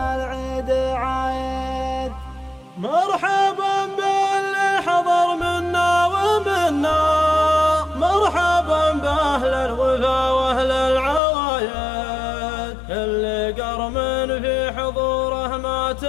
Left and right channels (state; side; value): drops out; right; at 11.2 s